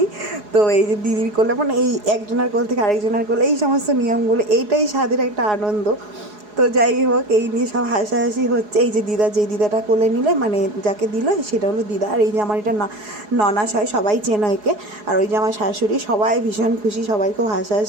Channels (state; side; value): late; left; 4.8 ms